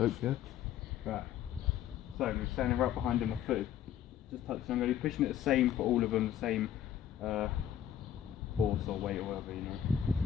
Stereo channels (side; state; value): right; quieter; 10.4 dB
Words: here. Right. So I'm standing right behind him, my foot just touching. I'm going to be pushing it the same for all of them, the same force or weight or whatever, you know.